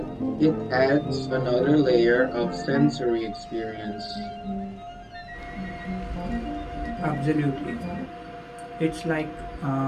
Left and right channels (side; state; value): both; identical; correlation 1.00